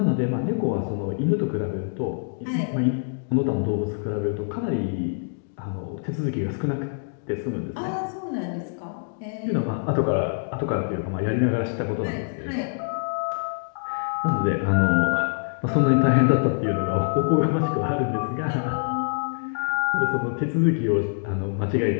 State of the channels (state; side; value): silent; right; digital silence